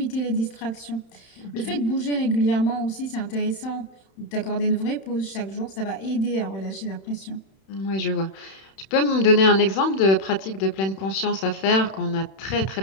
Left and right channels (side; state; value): right; late; 31 ms